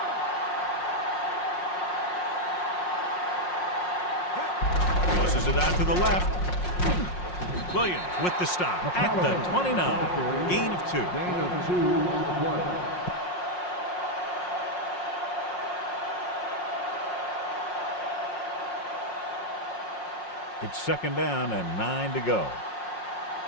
Tosses it out to the left. Williams with the stop at the 29. Gain of 2. It's second down and 9 to go.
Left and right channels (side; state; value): right; late; 5.5 ms